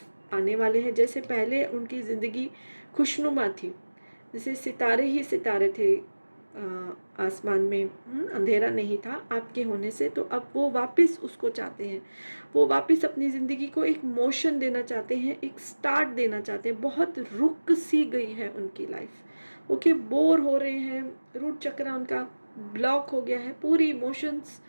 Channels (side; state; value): both; inverted; correlation -1.00